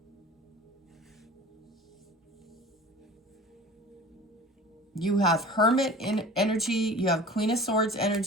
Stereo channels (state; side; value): normal; both; correlation 0.40